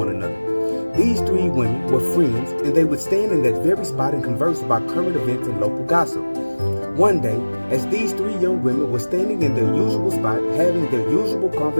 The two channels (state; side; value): inverted; both; correlation -1.00